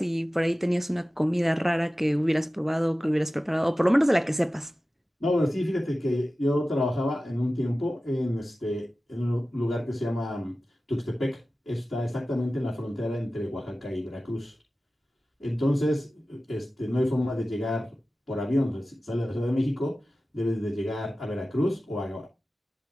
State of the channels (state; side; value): normal; both; correlation 0.95